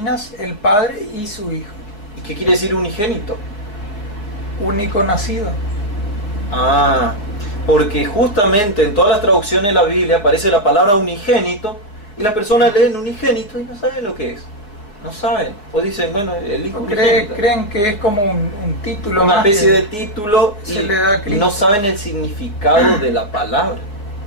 el Padre y su Hijo. ¿Y qué quiere decir unigénito? Único nacido. Porque justamente en todas las traducciones de la Biblia aparece la palabra unigénito y las personas leen unigénito y no saben lo que es. No saben. O dicen, bueno, el Hijo unigénito. Creen que es como un título. Una especie de título y no saben el significado de la palabra.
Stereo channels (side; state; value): right; late; 4.8 ms